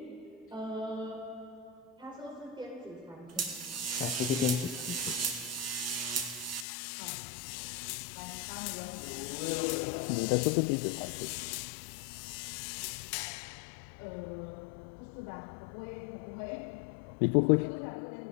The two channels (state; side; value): drops out; right; at 6.7 s